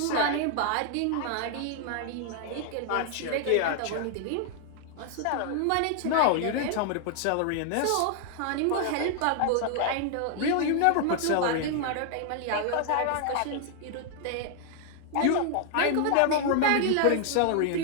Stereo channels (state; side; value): different; both; correlation 0.00